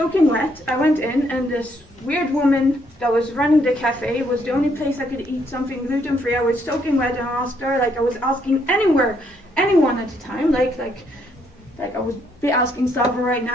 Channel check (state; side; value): normal; both; correlation 0.71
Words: wet. I went in, and this weird woman that was running the cafe was the only place I could eat something gluten-free. I was soaking wet, and I asked her, like I was asking anyone at the time, like I would be asking Slava right